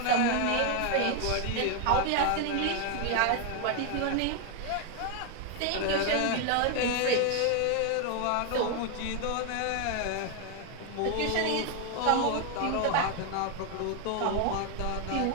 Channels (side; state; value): both; different; correlation 0.01